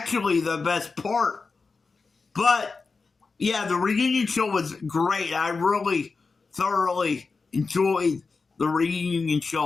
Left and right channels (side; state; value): right; quieter; 4.4 dB